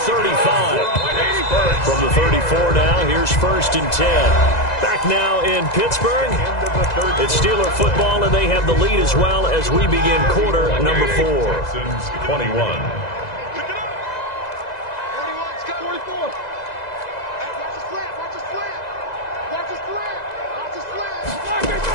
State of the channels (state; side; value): late; right; 2.0 ms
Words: 35. From the 34 now, here's 1st and 10. Back now in Pittsburgh. It's Steeler football, and they have the lead as well as we begin quarter number 4. Texans 21.